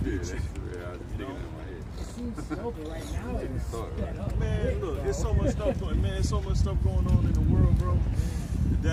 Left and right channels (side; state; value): both; identical; correlation 1.00